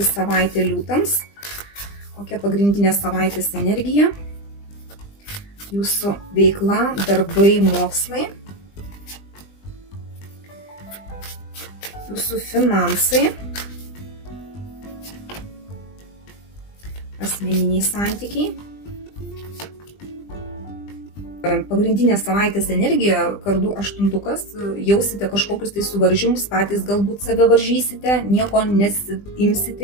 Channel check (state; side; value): late; right; 20 ms